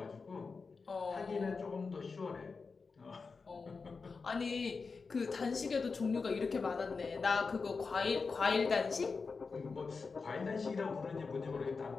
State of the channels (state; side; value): quieter; right; 4.6 dB